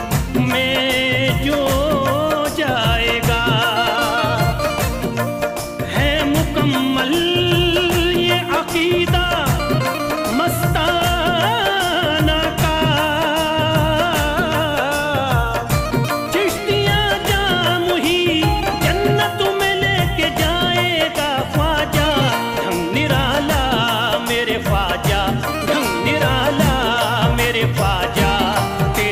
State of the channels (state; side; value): identical; both; correlation 1.00